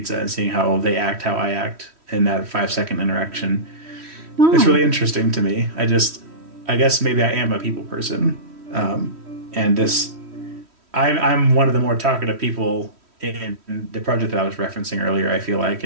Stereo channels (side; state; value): left; late; 3.1 ms